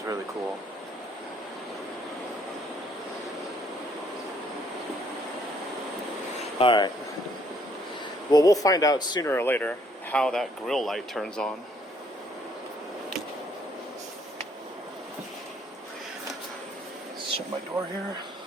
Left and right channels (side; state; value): both; normal; correlation 0.66